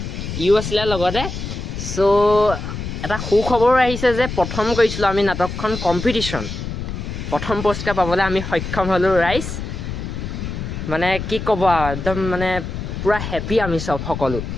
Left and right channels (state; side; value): noise; left; rumble, 6 dB below the sound